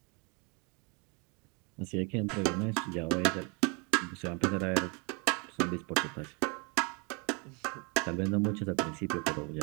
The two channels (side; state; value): left; quieter; 32.5 dB